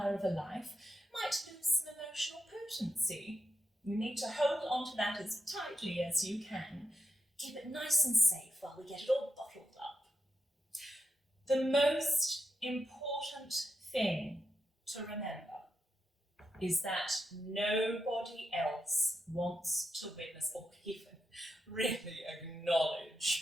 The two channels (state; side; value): normal; both; correlation 0.85